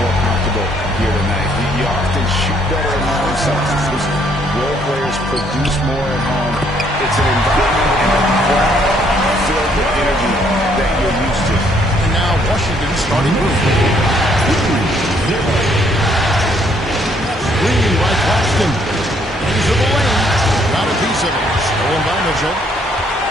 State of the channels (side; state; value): both; normal; correlation 0.67